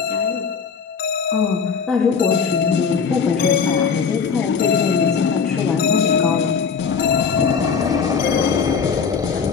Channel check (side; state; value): right; quieter; 6.0 dB